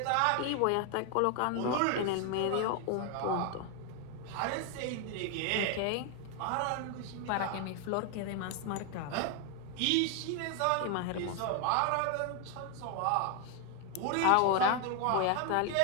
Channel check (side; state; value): both; different; correlation 0.01